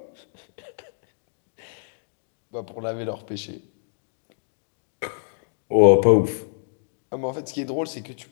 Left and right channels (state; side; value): silent; right; digital silence